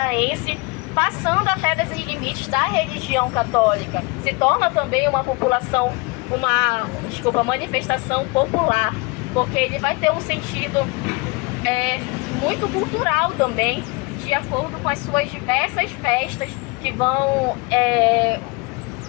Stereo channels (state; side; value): quieter; right; 27.4 dB